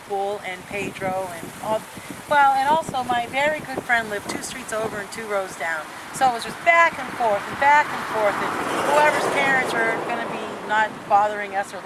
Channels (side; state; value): both; identical; correlation 1.00